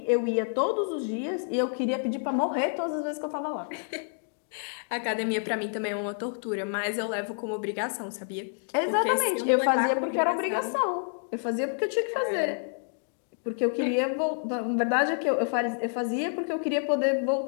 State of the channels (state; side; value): silent; right; 59 dB below the other